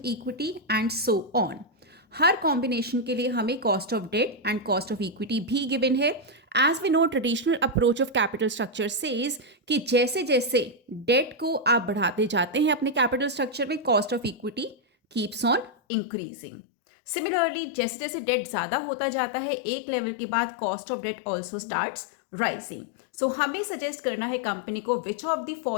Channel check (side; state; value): right; drops out; at 15.7 s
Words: equity and so on. हर combination के लिए हमें cost of debt and cost of equity भी given है। As we know, traditional approach of capital structure says कि जैसे जैसे date को आप बढ़ाते जाते हैं अपने कैपिटल स्ट्रक्चर में, cost of equity keeps on increasing. Similarly जैसे जैसे डेट ज़्यादा होता जाता है, एक लेवल के बाद cost of debt also starts rising. So हमें सजेस्ट करना है कंपनी को which of the